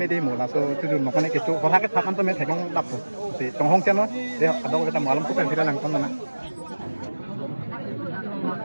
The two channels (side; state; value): both; inverted; correlation -1.00